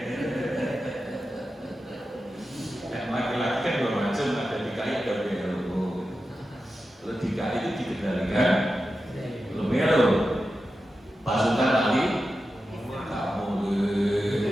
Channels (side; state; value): both; normal; correlation 0.91